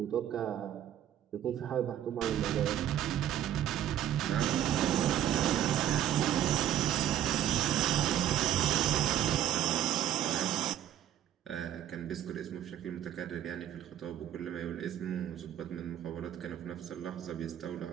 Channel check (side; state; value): left; quieter; 11.2 dB